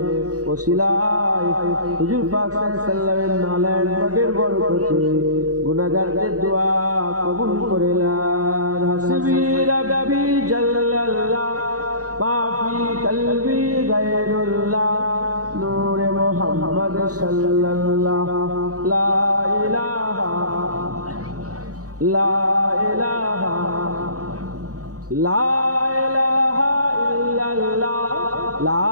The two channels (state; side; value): late; left; 0.67 ms